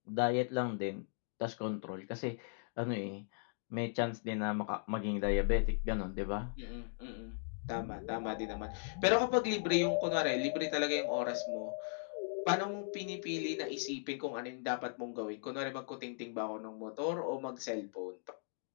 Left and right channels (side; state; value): right; silent; digital silence